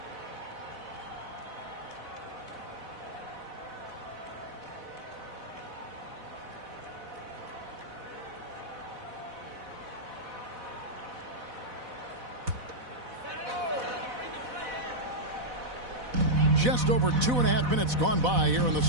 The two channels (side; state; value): left; late; 4.1 ms